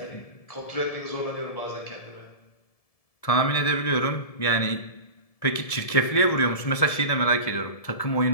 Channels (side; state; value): right; late; 1.7 ms